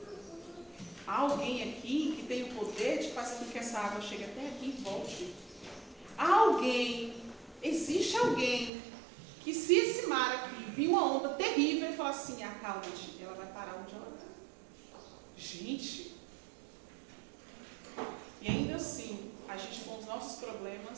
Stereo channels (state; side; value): drops out; left; at 8.7 s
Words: Há alguém aqui que tem o poder de fazer com que essa água chegue até aqui e volte. Há alguém, existe alguém, que se esse mar aqui vir uma onda terrível e falar assim, acalma-te, ela vai parar onde ela está. Gente, e ainda assim, a gente com os nossos